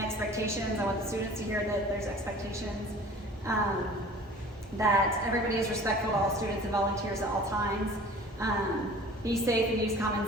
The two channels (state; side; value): normal; both; correlation 0.45